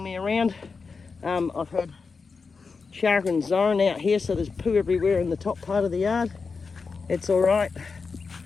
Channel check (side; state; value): right; quieter; 4.8 dB